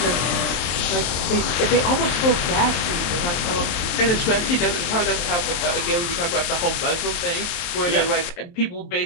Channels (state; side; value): late; right; 23 ms